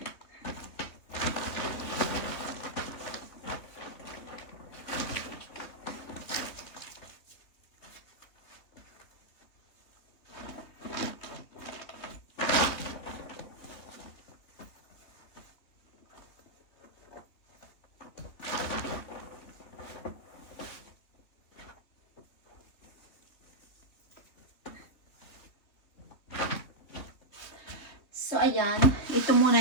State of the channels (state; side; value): late; right; 3.2 ms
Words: So, ayan. Ito muna